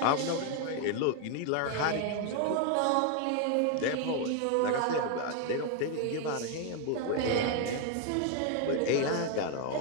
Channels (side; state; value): both; different; correlation 0.01